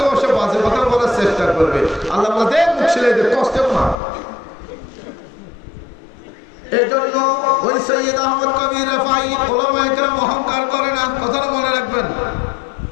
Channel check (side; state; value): right; drops out; at 4.0 s